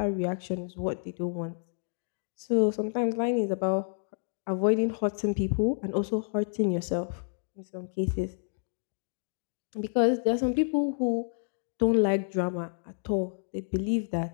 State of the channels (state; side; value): silent; right; digital silence